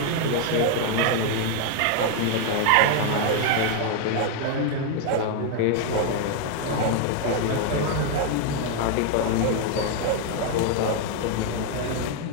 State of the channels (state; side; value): different; both; correlation 0.01